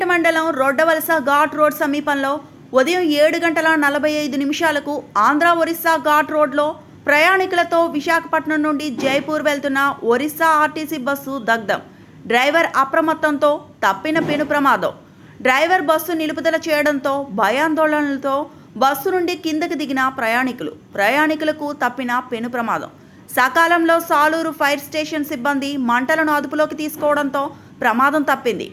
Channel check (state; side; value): identical; both; correlation 1.00